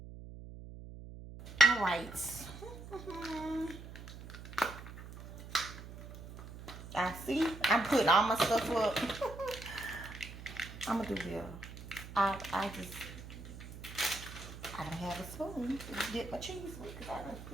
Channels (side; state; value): right; noise; hum, 13 dB below the sound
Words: All right. I see. I'm putting all my stuff up. I'm gonna do this. I don't have a spoon to dip my cheese with because I didn't